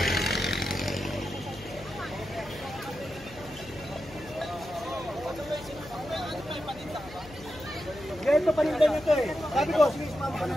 Ganito panindan nyo ito eh. Sabi ko, sige, sumama ka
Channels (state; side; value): noise; left; hum, 18 dB below the sound